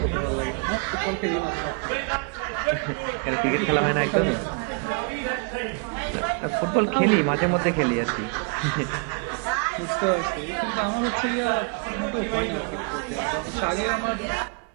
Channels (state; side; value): quieter; left; 34.9 dB